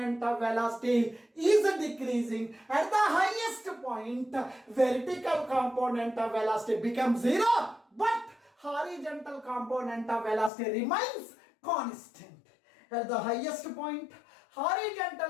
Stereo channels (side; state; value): right; drops out; at 10.5 s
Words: of velocity is decreasing. At the highest point, vertical component of velocity becomes 0, but horizontal component of velocity remains constant. At the highest point,